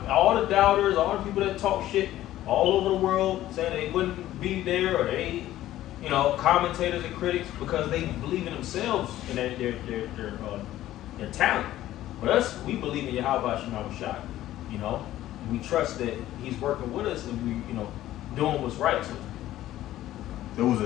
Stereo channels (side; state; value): right; quieter; 14.1 dB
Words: all the doubters, all the people that talk shit all over the world, saying they wouldn't be there, or they, you know, commentators and critics, because they believe in themselves and their talent. But us, we believe in Yahweh Shai, you know. We trust that he's working with us, and we, you know, doing what's right. So there was a